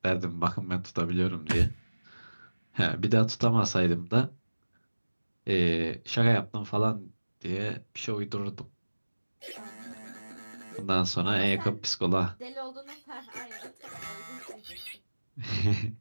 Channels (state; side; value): inverted; both; correlation -1.00